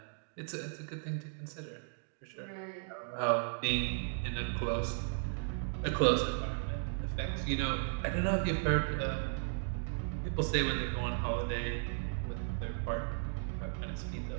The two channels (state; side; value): silent; left; digital silence